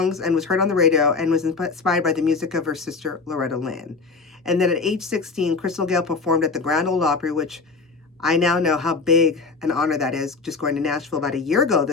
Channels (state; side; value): quieter; right; 4.4 dB